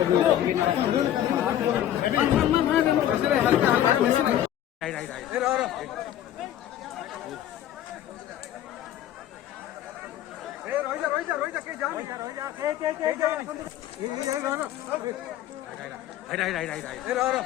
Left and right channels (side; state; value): right; quieter; 11.8 dB